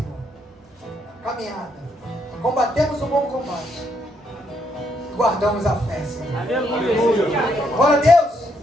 a caminhada, combatemos o bom combate, guardamos a fé, Senhor. Aleluia. Glória a Deus.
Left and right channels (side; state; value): both; normal; correlation 0.74